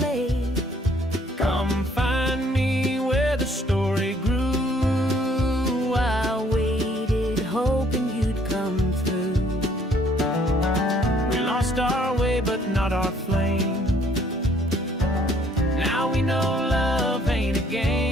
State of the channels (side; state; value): both; normal; correlation 0.63